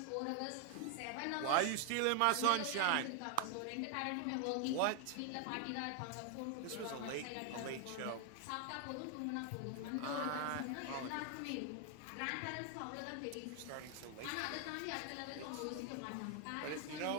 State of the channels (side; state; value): both; different; correlation 0.00